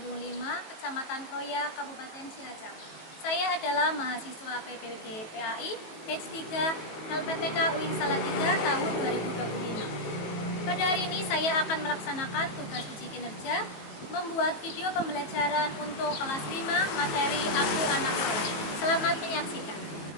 5, Kecamatan Kroya, Kabupaten Cilacap. Saya adalah mahasiswa PPG PAI Batch 3 LPTK UIN Salatiga tahun 2025. Pada hari ini saya akan melaksanakan tugas uji kinerja membuat video pembelajaran untuk kelas 5 materi Aku Anak Soleh. Selamat menyaksikan.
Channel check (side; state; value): right; late; 19 ms